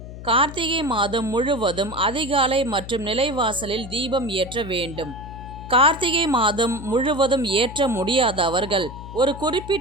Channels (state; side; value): noise; left; hum, 12 dB below the sound